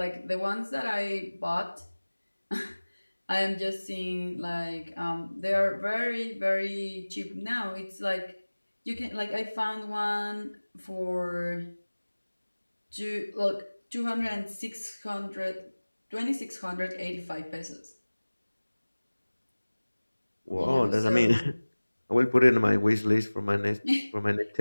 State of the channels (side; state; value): both; inverted; correlation -1.00